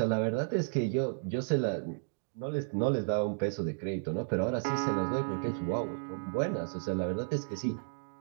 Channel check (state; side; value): silent; left; digital silence